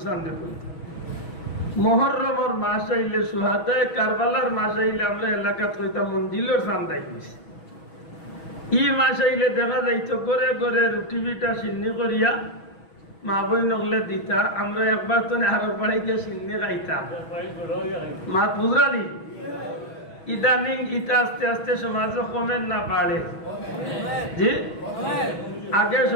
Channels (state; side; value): late; right; 6.2 ms